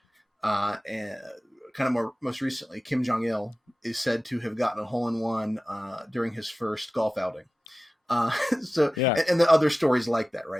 and kind of most recently, Kim Jong-il is said to have gotten a hole-in-one during his first golf outing. And the other stories like that,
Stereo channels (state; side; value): normal; both; correlation 0.95